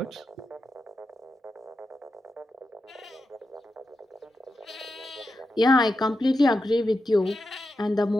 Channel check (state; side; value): normal; both; correlation 0.89